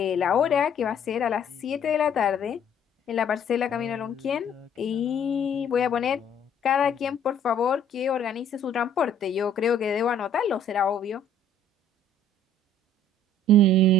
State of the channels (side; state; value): both; normal; correlation 0.58